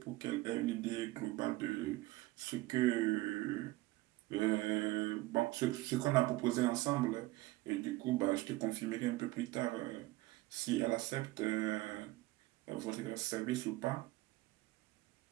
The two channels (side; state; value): left; quieter; 19.2 dB